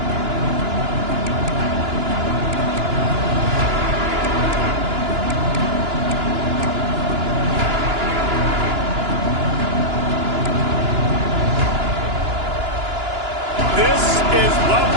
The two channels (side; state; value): left; late; 2.9 ms